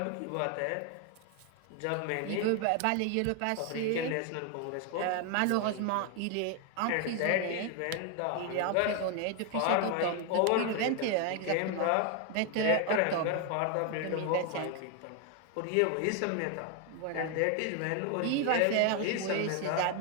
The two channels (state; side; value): different; both; correlation 0.01